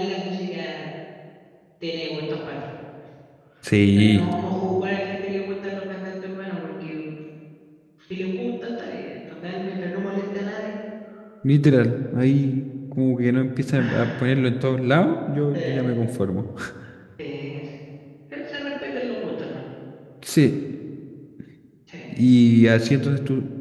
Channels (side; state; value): both; identical; correlation 1.00